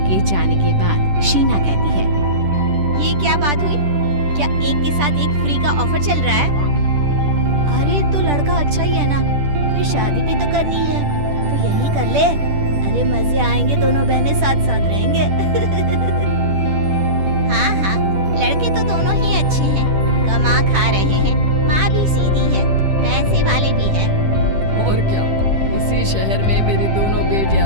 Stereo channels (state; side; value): late; left; 10 ms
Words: जाने के बाद शीना कहती है, ये क्या बात हुई? क्या एक के साथ एक फ्री का ऑफर चल रहा है? अरे तो लड़का अच्छा ही है ना, फिर शादी भी तो करनी है तो यही कर ले। अरे मजे आएंगे, दोनों बहनें साथ साथ रहेंगे। हाँ, लड़के तो दोनों ही अच्छे हैं, कमा खा रहे हैं, माँ भी सीधी है, पैसे वाले भी है। और क्या, इसी शहर में मेरी दोनों